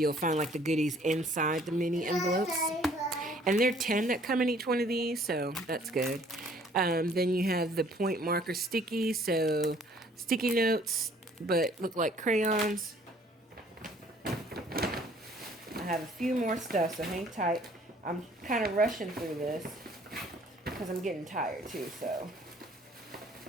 find like the goodies inside the mini envelopes. And there are 10 that come in each one of these, so that's good. Then you have the point marker stickies, so sticky notes, but look like crayons. have a few more stuff, so hang tight. I'm kind of rushing through this because I'm getting tired too, so.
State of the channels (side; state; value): both; normal; correlation 0.58